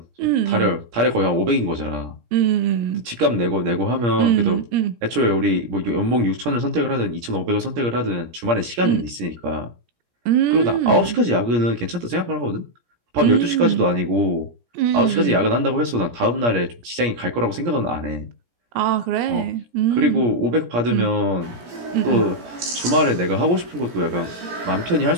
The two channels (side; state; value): left; late; 17 ms